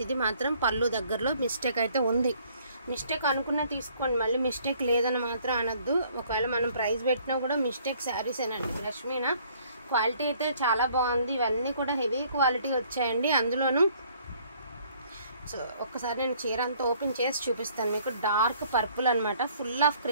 ఇది మాత్రం పళ్ళు దగ్గరలో మిస్టేక్ అయితే ఉంది. మిస్టేక్ అనుకున్నా తీసుకోండి, మళ్ళీ మిస్టేక్ లేదని మాత్రం అనొద్దు. ఒకవేళ మనం ప్రైస్ పెట్టినా కూడా మిస్టేక్ శారీసేనండి. బ్రష్ మీనా క్వాలిటీ అయితే చాలా బాగుంది. ఇవన్నీ కూడా హెవీ క్వాలిటీ వచ్చాయండి. అందులోనూ సో ఒక్కసారి నేను చీర అంతా ఓపెన్ చేసి చూపిస్తాను మీకు. డార్క్ పర్పుల్ అనమాట. ఫుల్ ఆఫ్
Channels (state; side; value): inverted; both; correlation -0.60